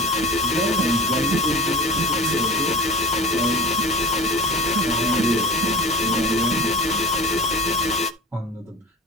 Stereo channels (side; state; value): both; normal; correlation 0.36